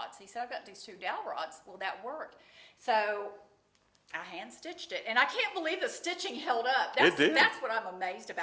He said, I've got these 2 dowel rods. Will that work? So I hand stitched it, and I can't believe the stitching held up. It did. That's what I'm amazed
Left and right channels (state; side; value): identical; both; correlation 1.00